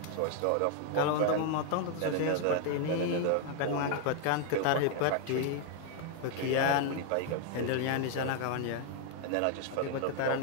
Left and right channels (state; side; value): different; both; correlation 0.00